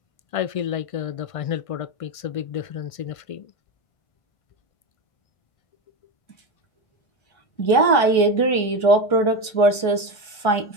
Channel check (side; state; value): right; late; 1.3 ms